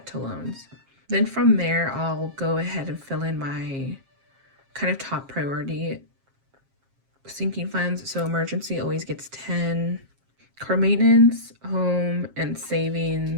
to loans. Then from there, I'll go ahead and fill in my kind of top priority sinking funds. So emergency always gets 10. Car maintenance, home, and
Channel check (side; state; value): left; late; 7.4 ms